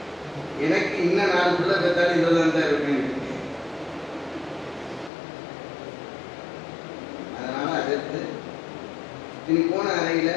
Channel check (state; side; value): drops out; right; at 5.1 s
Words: எனக்கு இன்னும் 4 பிள்ளை பெற்றாலும் இதில் தான் இருக்கேன். அதனால அதற்கு இனி போன அறையில்